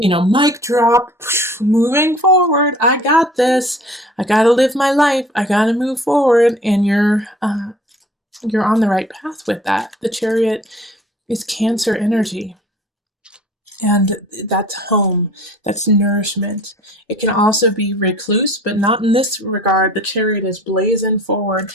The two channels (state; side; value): normal; both; correlation 0.48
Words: drop, moving forward. I got this. I got to live my life. I got to move forward. And you're on the right path with that. The Chariot is Cancer energy. And that's home. That's nourishment. It can also be recluse, but not in this regard. The Chariot is blazing forward,